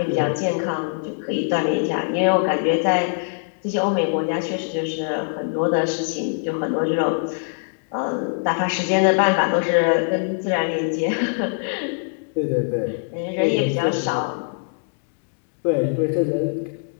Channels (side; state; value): right; silent; digital silence